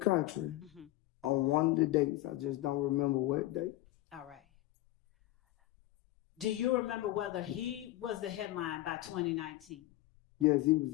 on one of the dates. I just don't remember what date. All right. Do you remember whether he was the headline by 2019? Yes, he was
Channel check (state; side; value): quieter; right; 16.4 dB